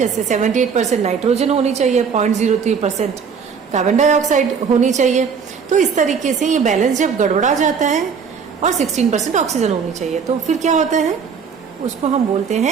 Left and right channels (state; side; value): quieter; left; 6.2 dB